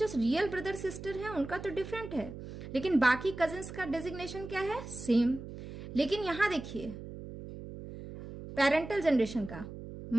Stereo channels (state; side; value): noise; right; hum, 11 dB below the sound